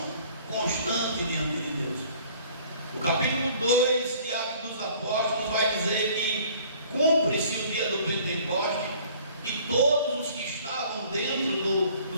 constante diante de Deus. O capítulo 2 de Atos dos Apóstolos vai dizer que cumpre-se o dia do Pentecoste e todos os que estavam dentro do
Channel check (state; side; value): inverted; both; correlation -0.53